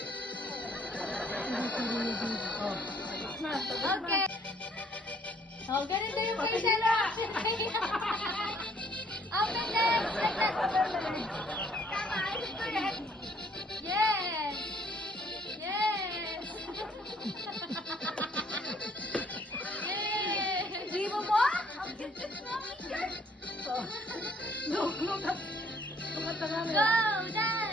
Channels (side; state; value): both; normal; correlation 0.63